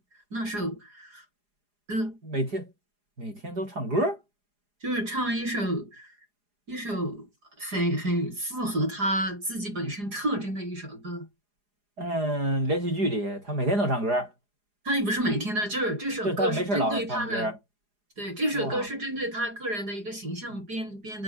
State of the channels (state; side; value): late; left; 4.8 ms